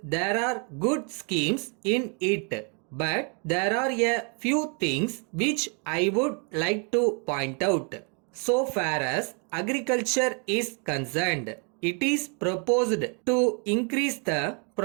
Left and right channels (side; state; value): left; quieter; 37.7 dB